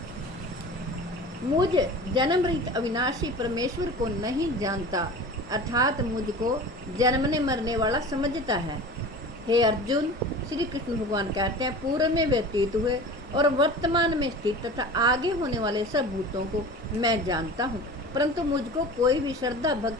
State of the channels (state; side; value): normal; both; correlation 0.37